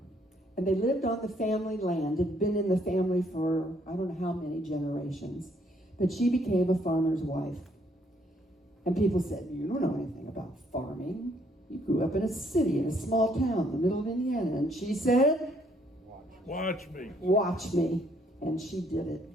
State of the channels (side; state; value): both; normal; correlation 0.68